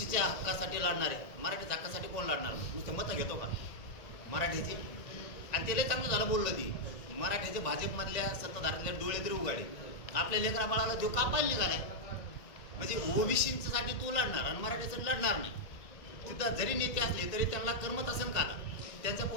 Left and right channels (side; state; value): right; late; 1.9 ms